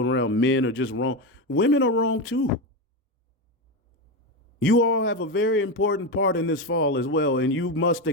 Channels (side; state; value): both; normal; correlation 0.13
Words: around men are just wrong. Women are wrong too. You all have a very important part in this fall as well, and you must